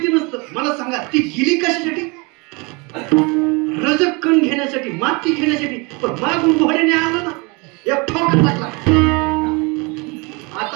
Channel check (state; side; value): quieter; left; 28.8 dB